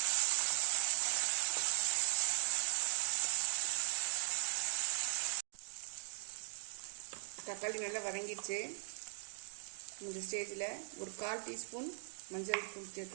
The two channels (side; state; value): left; silent; digital silence